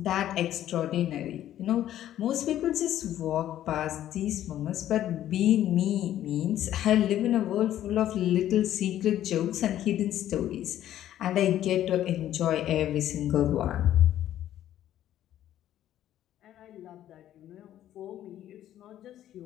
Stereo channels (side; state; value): right; quieter; 12.1 dB